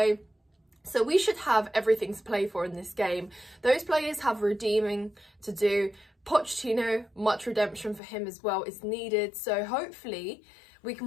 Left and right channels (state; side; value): drops out; right; at 8.0 s